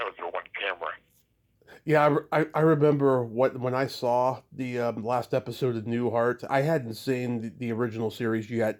was the one camera. Yeah, I remember when I saw the last episode of Newhart. I hadn't seen the original series yet.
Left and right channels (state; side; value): identical; both; correlation 1.00